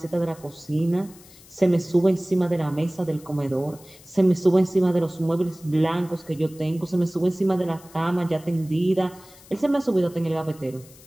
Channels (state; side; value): noise; left; hiss, 23 dB below the sound